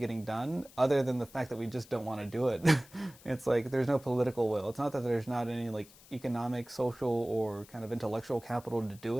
done other than the fact that we just don't want to do it. It's like there's no political will. It's not that there's not any like economic, social, or kind of intellectual capital to do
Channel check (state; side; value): noise; left; hiss, 23 dB below the sound